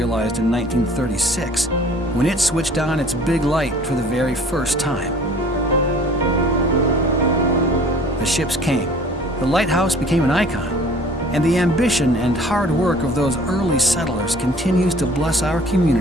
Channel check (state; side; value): normal; both; correlation 0.50